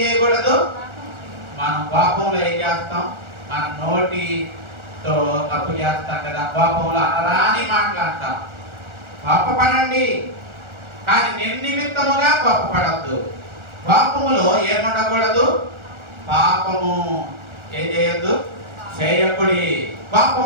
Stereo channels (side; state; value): left; late; 1.4 ms